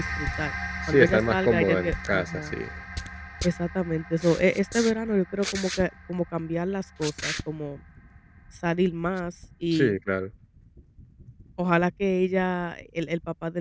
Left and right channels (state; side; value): identical; both; correlation 1.00